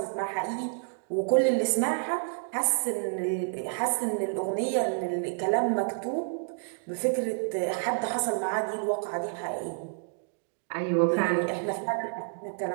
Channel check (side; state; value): left; silent; digital silence